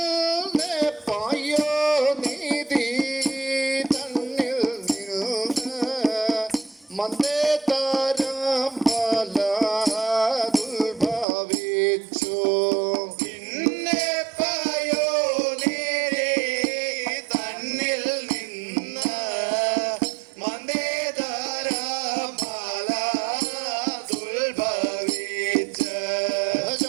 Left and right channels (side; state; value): left; drops out; at 11.2 s